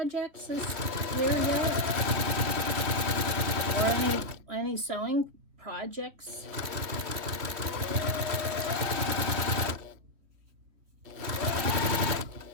this year yet? Or any sewing projects?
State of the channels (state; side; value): late; left; 3.1 ms